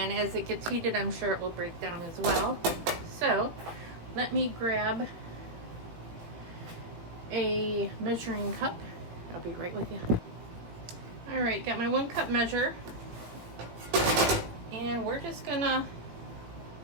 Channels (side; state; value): left; late; 18 ms